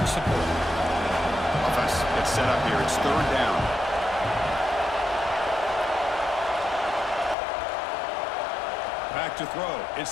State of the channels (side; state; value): right; drops out; at 7.4 s